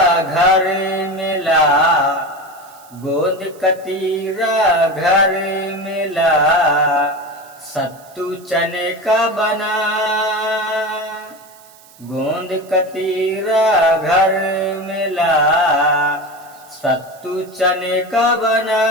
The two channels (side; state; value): right; noise; hiss, 25 dB below the sound